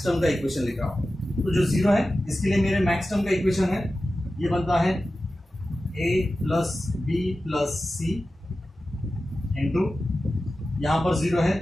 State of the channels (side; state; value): both; normal; correlation 0.94